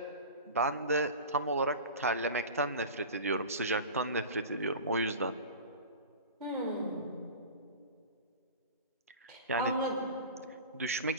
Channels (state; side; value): inverted; both; correlation -0.33